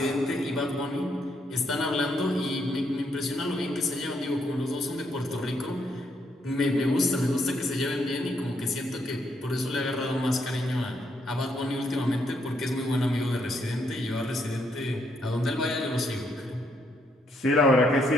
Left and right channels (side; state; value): both; normal; correlation 0.75